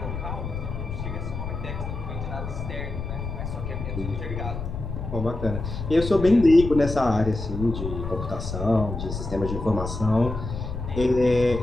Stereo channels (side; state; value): left; noise; rumble, 6 dB below the sound